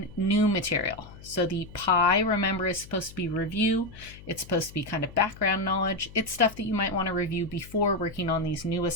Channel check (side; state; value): left; noise; hum, 18 dB below the sound